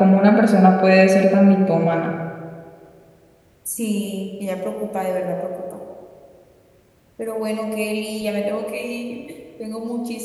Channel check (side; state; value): both; identical; correlation 1.00